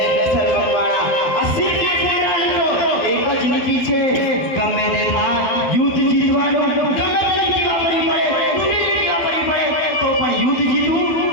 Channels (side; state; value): right; late; 12 ms